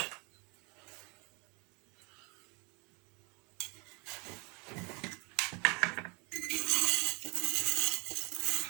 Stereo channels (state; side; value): quieter; left; 30.7 dB